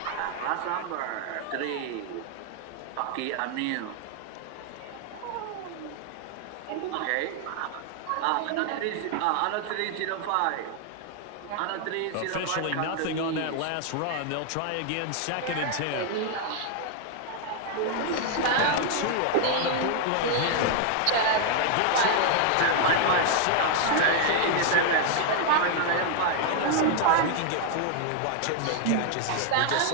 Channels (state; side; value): different; both; correlation 0.00